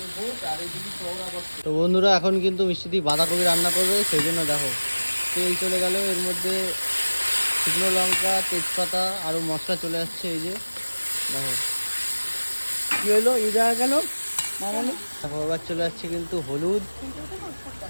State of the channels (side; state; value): both; inverted; correlation -1.00